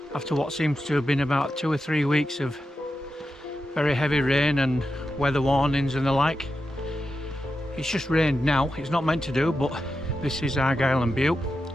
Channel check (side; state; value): both; normal; correlation 0.89